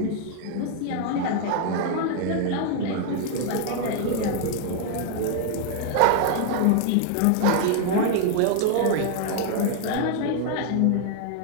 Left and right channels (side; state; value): both; different; correlation 0.00